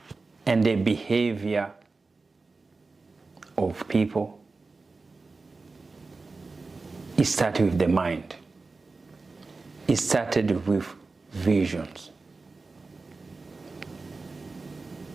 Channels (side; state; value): left; quieter; 3.8 dB